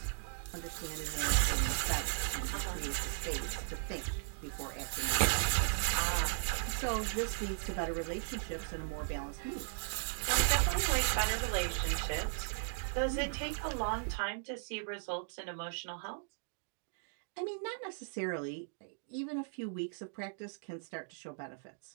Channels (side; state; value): left; silent; digital silence